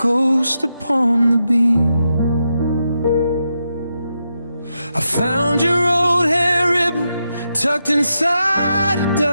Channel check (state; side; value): inverted; both; correlation -0.85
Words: upon the beam. I found your old hair ribbon tucked inside a